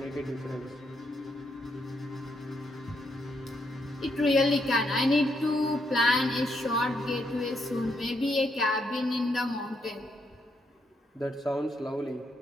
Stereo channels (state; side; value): normal; both; correlation 0.77